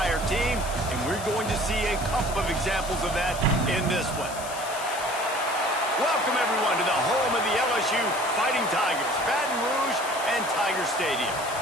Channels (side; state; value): left; noise; hiss, 12 dB below the sound